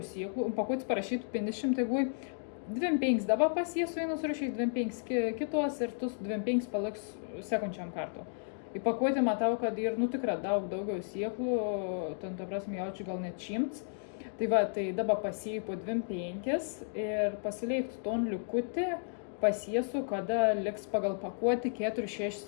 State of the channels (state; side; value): silent; right; digital silence